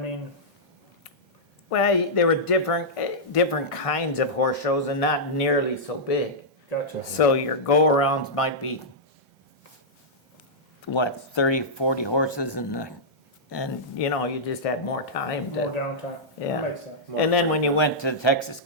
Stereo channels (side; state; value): both; normal; correlation -0.11